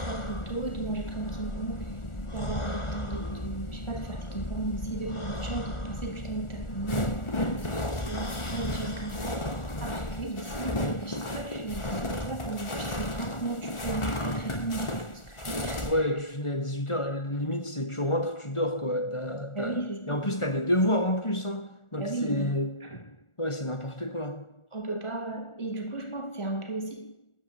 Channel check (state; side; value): late; right; 1.4 ms